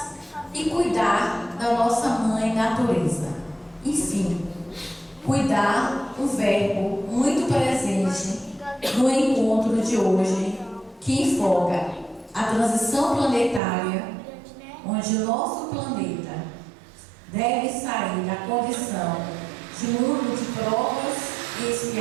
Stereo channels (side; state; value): left; drops out; at 13.6 s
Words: e cuidar da nossa mãe natureza. Enfim, cuidar, um verbo muito presente no encontro de hoje, que enfoca a transição planetária, onde o nosso planeta deve sair da condição de mundo de provas e